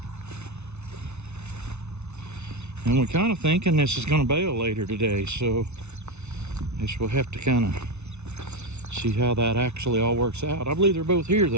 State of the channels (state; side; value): late; left; 0.81 ms